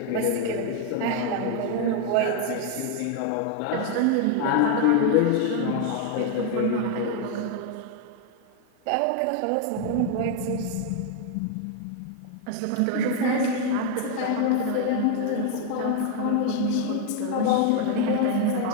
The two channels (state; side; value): different; both; correlation 0.01